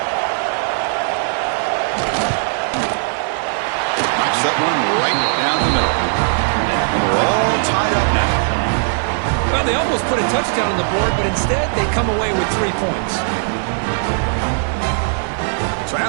That one right down the middle. And we're all tied up now. Well, they almost put a touchdown on the board, but instead they come away with 3 points. So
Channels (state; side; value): silent; left; digital silence